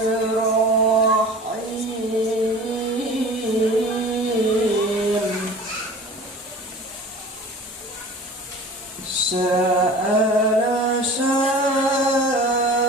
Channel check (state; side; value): normal; both; correlation 0.40